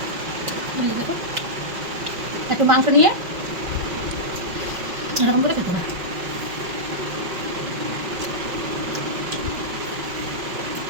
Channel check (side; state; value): left; late; 5.4 ms